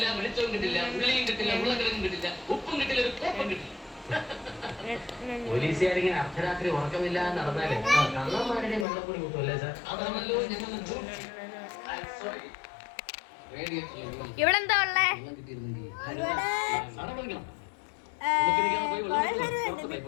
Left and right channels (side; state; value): right; drops out; at 8.8 s